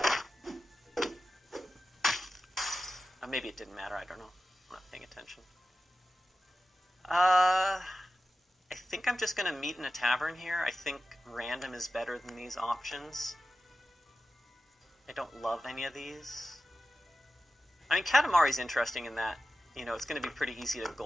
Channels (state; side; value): normal; both; correlation 0.94